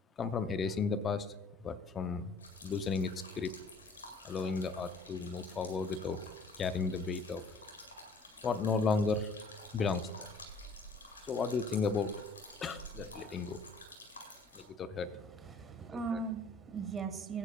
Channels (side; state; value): right; quieter; 3.5 dB